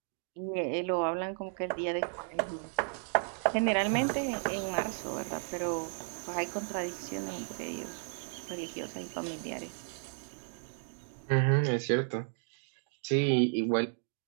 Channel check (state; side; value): silent; left; 55 dB below the other